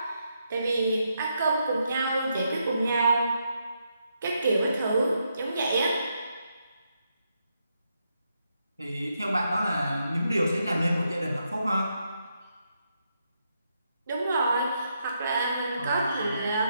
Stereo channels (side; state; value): both; inverted; correlation -0.80